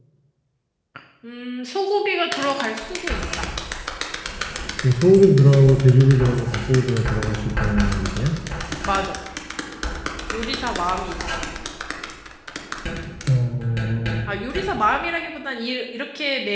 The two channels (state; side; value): identical; both; correlation 1.00